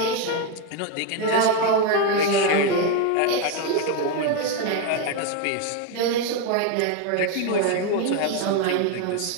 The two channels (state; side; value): different; both; correlation 0.02